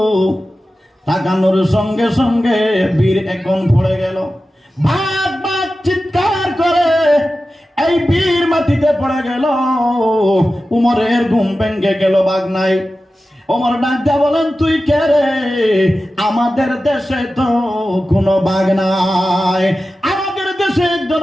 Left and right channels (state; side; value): normal; both; correlation 0.94